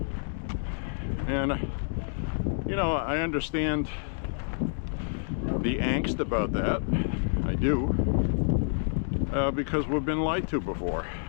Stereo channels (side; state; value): right; silent; digital silence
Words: And, you know, I understand the angst about that. I do. Because we've been lied to before.